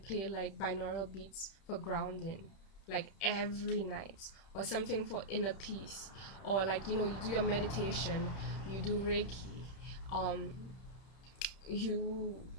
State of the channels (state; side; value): late; right; 31 ms